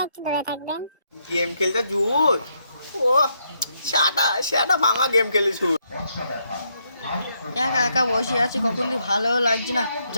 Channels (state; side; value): inverted; both; correlation -0.77